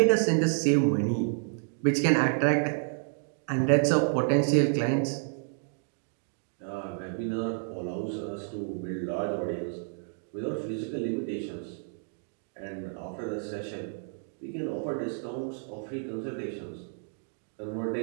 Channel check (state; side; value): silent; left; 58 dB below the other